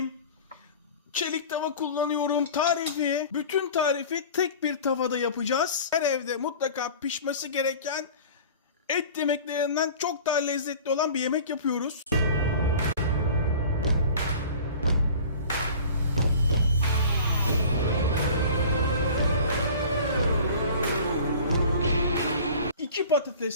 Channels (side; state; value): both; inverted; correlation -0.42